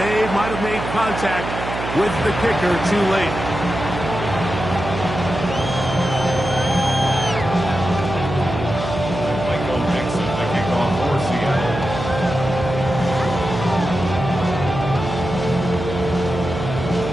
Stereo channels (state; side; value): noise; right; hum, 6 dB below the sound